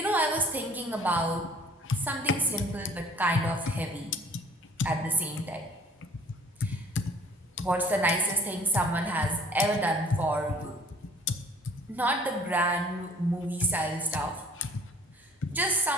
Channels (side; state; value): both; normal; correlation 0.54